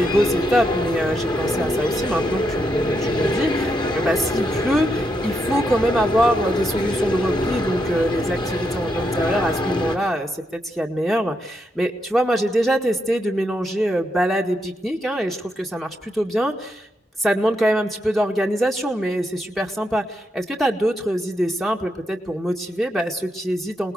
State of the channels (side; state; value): both; normal; correlation 0.81